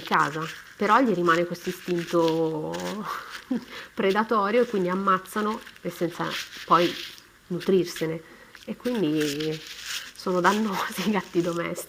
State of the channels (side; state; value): both; identical; correlation 1.00